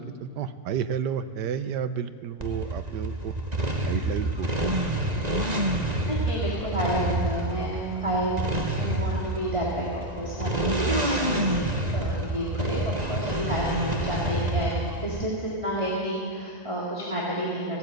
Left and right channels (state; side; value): late; left; 1.9 ms